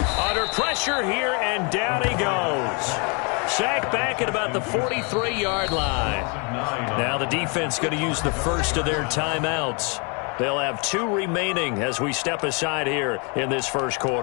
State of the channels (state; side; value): quieter; right; 33.9 dB